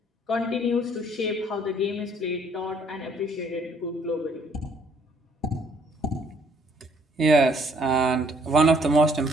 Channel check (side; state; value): both; normal; correlation 0.63